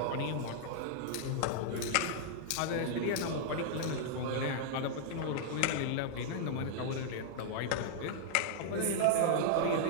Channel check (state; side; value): different; both; correlation -0.01